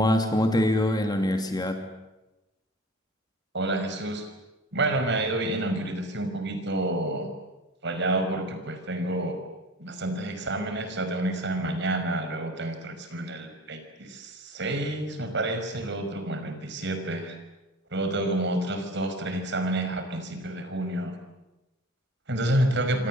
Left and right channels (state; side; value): normal; both; correlation 0.41